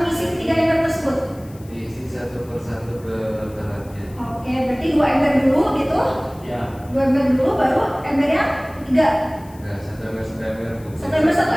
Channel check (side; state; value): left; noise; hiss, 25 dB below the sound